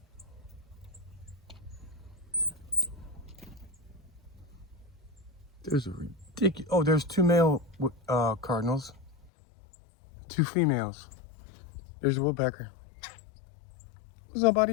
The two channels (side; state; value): right; drops out; at 9.3 s